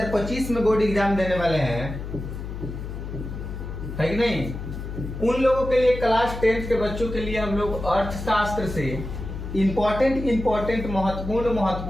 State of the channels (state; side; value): noise; left; hum, 7 dB below the sound